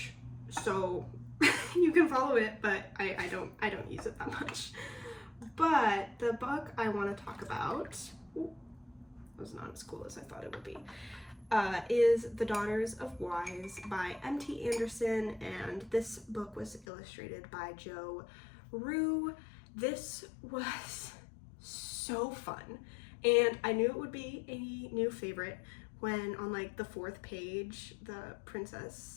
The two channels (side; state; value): right; drops out; at 16.9 s